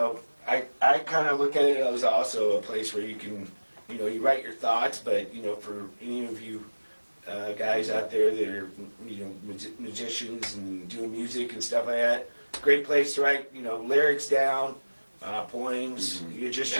I kind of look at it as also a place where you can, you write your thoughts. But for any of you guys out there that are musicians and doing music and stuff like that, great place to write lyrics down. Poems, your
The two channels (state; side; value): inverted; both; correlation -1.00